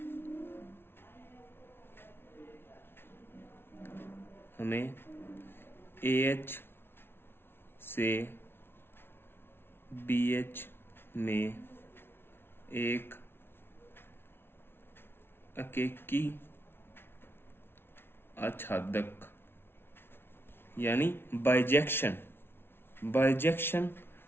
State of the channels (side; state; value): right; late; 0.11 ms